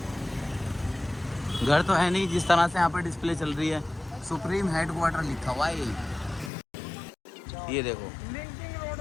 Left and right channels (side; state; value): right; drops out; at 6.5 s